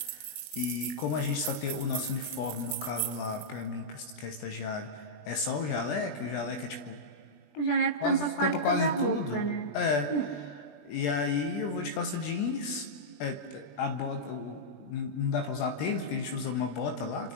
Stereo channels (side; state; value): right; late; 20 ms